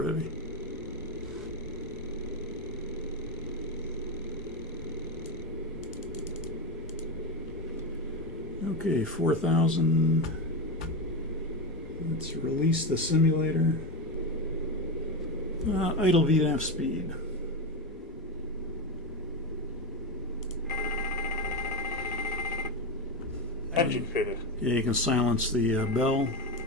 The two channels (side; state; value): both; normal; correlation 0.15